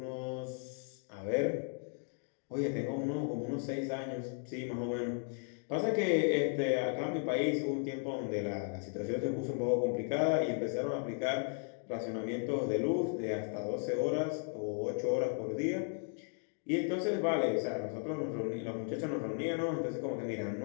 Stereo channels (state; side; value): silent; right; 54 dB below the other